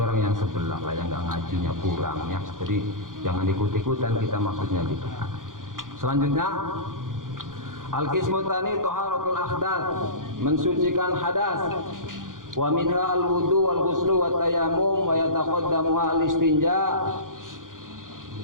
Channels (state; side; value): late; left; 0.89 ms